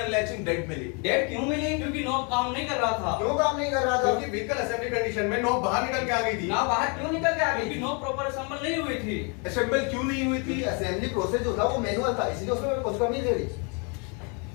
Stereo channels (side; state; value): right; quieter; 35.0 dB